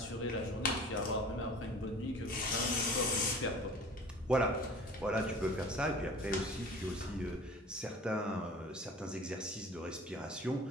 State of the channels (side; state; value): both; normal; correlation 0.43